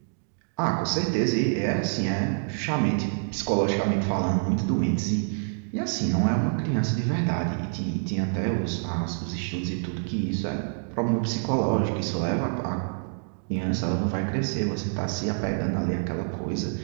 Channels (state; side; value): silent; left; digital silence